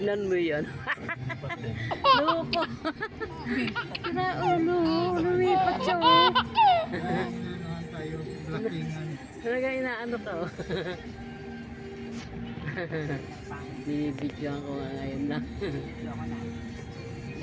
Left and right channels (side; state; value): both; identical; correlation 1.00